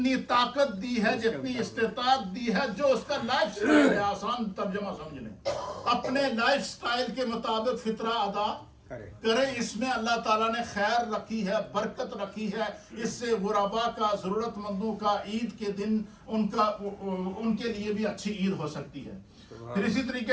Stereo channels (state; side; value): identical; both; correlation 1.00